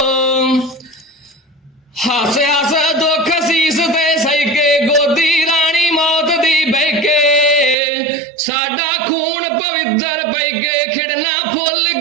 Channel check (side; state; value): left; drops out; at 7.8 s